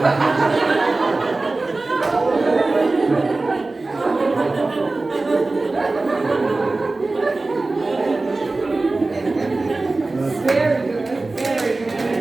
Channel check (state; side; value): quieter; left; 3.3 dB